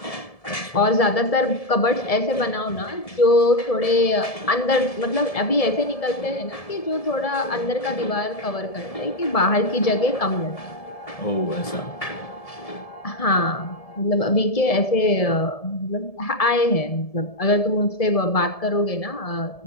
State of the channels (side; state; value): right; late; 1.7 ms